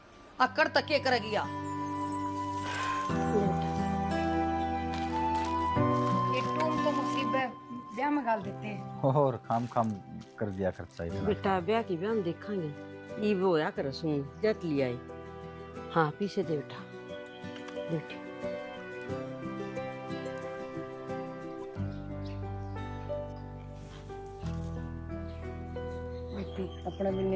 अकड़ तक के करेगी या ये टूम तो मुसीबत ब्याह में गाल देते हैं और खाम कर दिया खर्चा इतना। बेटा ब्याह की ब्याह हम देखेंगे, ये वो या कर सुन जट लिया है। हाँ पीछे दे बेटा, बेटी अपने भी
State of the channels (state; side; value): identical; both; correlation 1.00